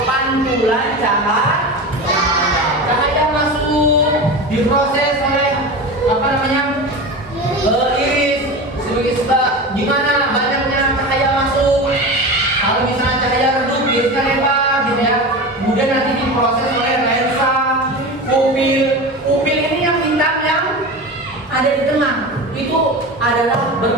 pantulan cahaya masuk, diproses oleh apa namanya iris sebagai sebab gimana banyaknya cahaya masuk. Kalau misalnya cahaya redup, irisnya lebar, gitu ya. Kemudian nanti diproses oleh lensa, pupil ini yang hitam yang ada di tengah. Itu adalah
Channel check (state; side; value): normal; both; correlation 0.27